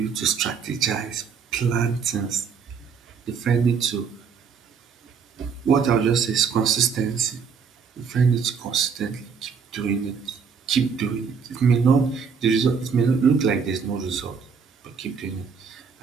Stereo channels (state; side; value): quieter; left; 6.1 dB